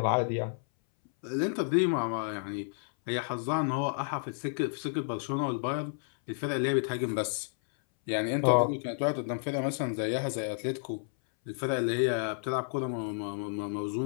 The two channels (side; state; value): right; silent; 57 dB below the other